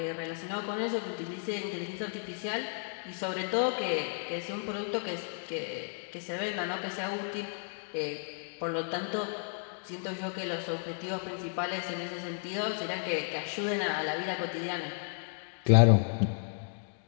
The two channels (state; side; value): silent; right; 56 dB below the other